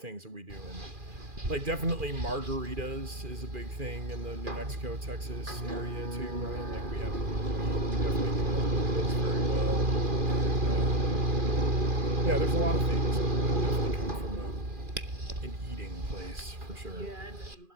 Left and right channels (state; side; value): late; left; 2.4 ms